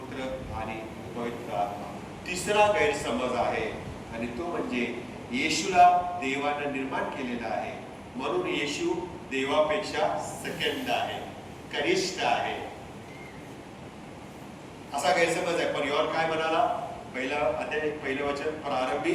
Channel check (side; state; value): both; identical; correlation 1.00